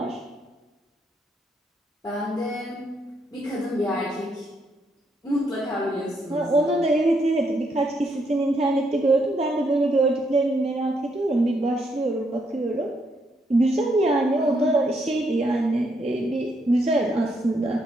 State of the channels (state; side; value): normal; both; correlation 0.75